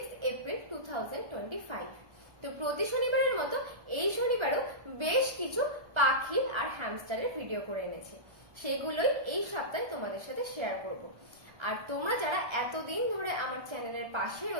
এপ্রিল 2025। তো প্রতি শনিবারের মতো এই শনিবারেও বেশ কিছু পাখি আর হ্যামস্টারের ভিডিও করে এনেছি, সেগুলোই এই সপ্তাহে তোমাদের সাথে শেয়ার করব। আর তোমরা যারা এতদিন ধরে আমার চ্যানেলের পাশে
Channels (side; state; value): left; late; 1.3 ms